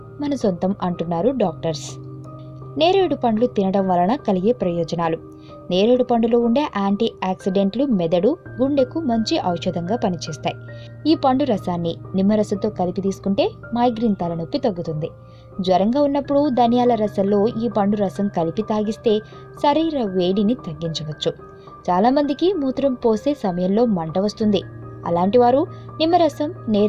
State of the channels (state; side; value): identical; both; correlation 1.00